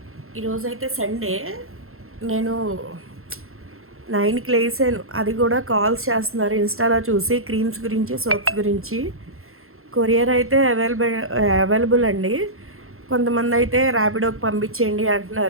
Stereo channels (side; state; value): left; late; 0.62 ms